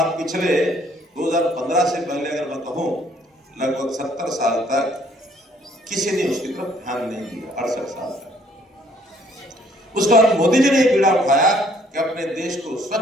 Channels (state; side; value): normal; both; correlation 0.62